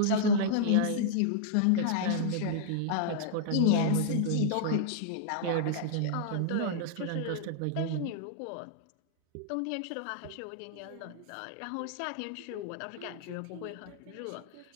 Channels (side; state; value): both; different; correlation -0.02